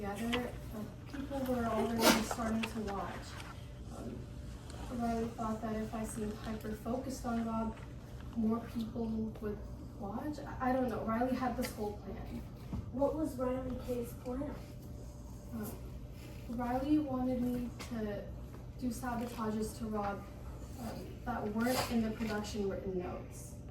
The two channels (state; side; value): identical; both; correlation 1.00